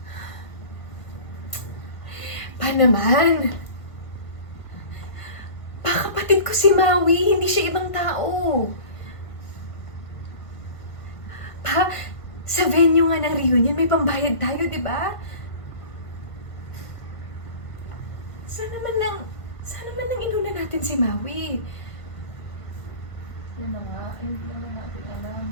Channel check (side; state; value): right; late; 1.6 ms